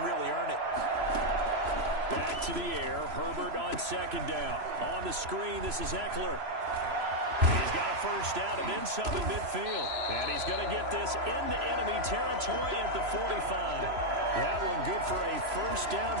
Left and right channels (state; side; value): late; left; 3.0 ms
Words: really earn it. Back to the air. Herbert on 2nd down. On the screen, this is Eckler. He's got a 1st down and then some in midfield. And he's going to get this into enemy territory at the 45. That one good for a 1st down